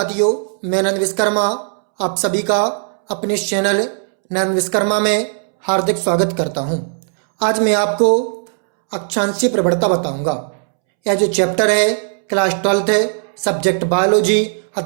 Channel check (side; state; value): left; silent; 68 dB below the other